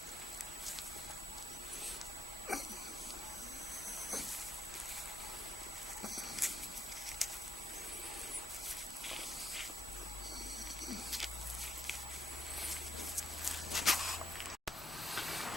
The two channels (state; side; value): normal; both; correlation 0.73